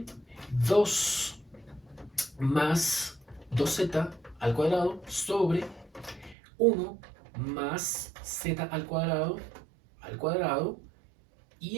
2 más 2z al cuadrado sobre 1 más z al cuadrado,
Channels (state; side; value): drops out; left; at 6.4 s